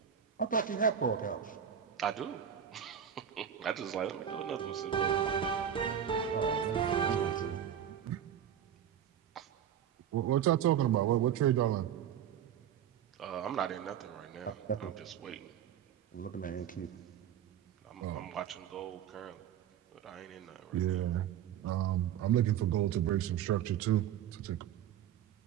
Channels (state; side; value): quieter; left; 9.3 dB